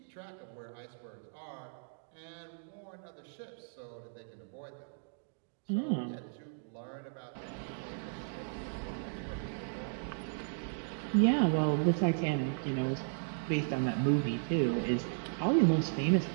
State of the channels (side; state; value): left; silent; digital silence